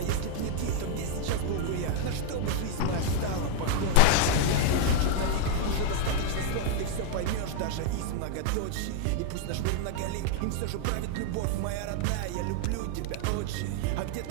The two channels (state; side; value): different; both; correlation 0.00